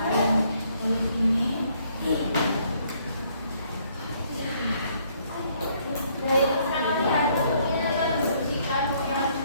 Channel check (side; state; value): both; inverted; correlation -0.67